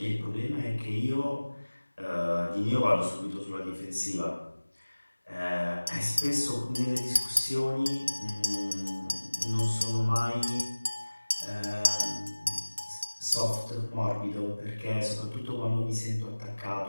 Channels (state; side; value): inverted; both; correlation -1.00